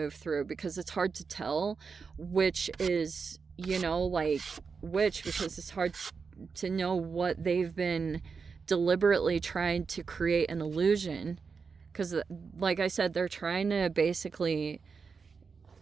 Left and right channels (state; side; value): quieter; left; 5.3 dB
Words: through, because it's hard to tell which is, you know, like which, because it's hard to know what they've been deliberately trying to create an illusion. Because like I said, they're trying to basically